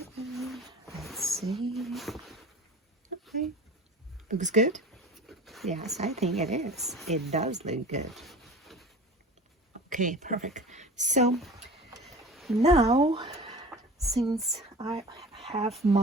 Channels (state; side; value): normal; both; correlation 0.38